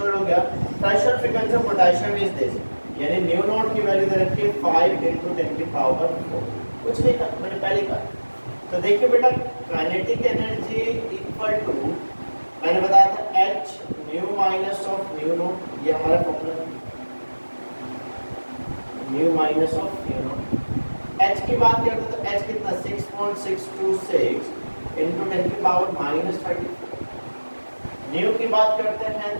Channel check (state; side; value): inverted; both; correlation -1.00